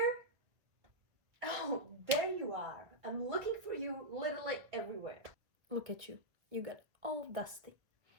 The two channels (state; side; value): late; left; 1.9 ms